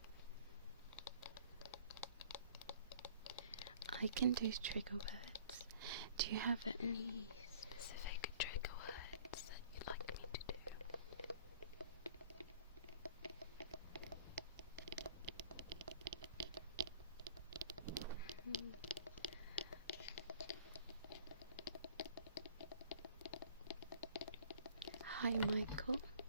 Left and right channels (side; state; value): both; inverted; correlation -0.51